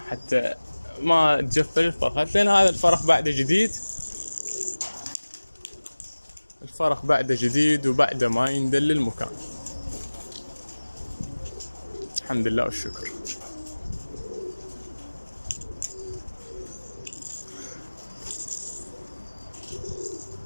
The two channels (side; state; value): both; inverted; correlation -1.00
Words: حتى ما تجفل الفرخة، لان هذا الفرخ بعده جديد، الفرخ بعده جديد وبعده ما يندل المكان. الحمد لله والشكر.